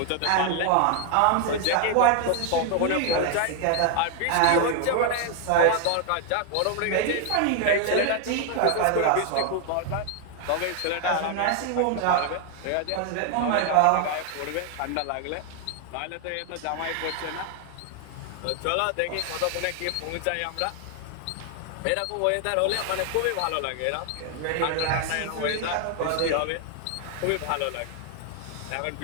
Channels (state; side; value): different; both; correlation 0.00